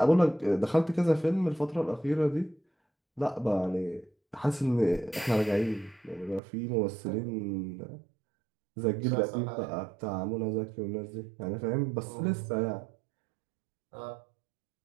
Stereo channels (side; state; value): left; drops out; at 6.4 s